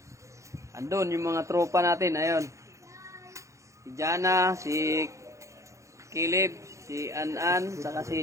Andun yung mga tropa natin, ayun. Si Jana, si Kilib, si An, saka si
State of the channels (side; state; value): left; late; 0.15 ms